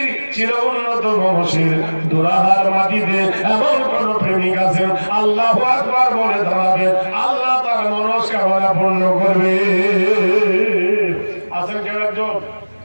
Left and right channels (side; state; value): both; inverted; correlation -1.00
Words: চির উন্নত মহসির দুরাহার মাটিতে এমন কোন প্রেমিক আছেন, আল্লাহু আকবার বলে দাঁড়াবেন, আল্লাহ তার মনস্কামনা পূর্ণ করবে। আছেন কেউ একজন?